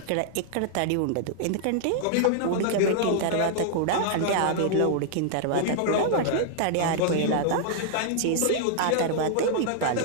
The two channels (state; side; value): different; both; correlation -0.01